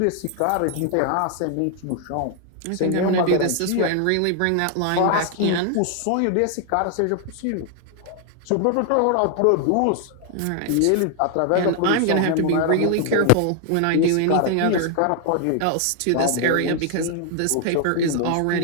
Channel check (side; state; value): both; different; correlation 0.00